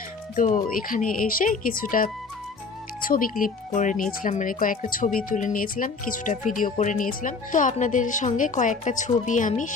তো এখানে এসে কিছুটা ছবি ক্লিপ করে নিয়েছিলাম, মানে কয়েকটা ছবি তুলে নিয়েছিলাম, কিছুটা ভিডিও করে নিয়েছিলাম। তো আপনাদের সঙ্গে কয়েকটা ছবি আমি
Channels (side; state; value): right; quieter; 4.5 dB